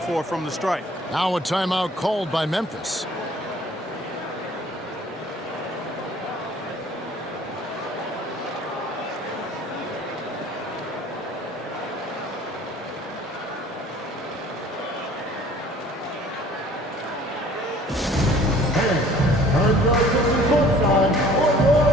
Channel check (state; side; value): normal; both; correlation 0.52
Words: from the strike. Now a timeout called by Memphis.